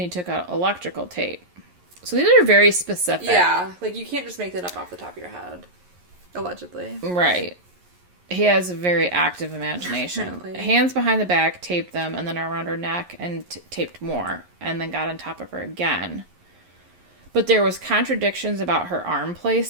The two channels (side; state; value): left; late; 11 ms